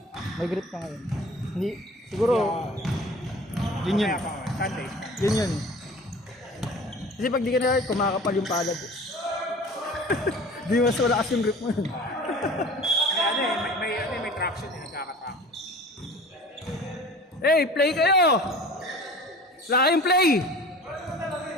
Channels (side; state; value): both; normal; correlation 0.42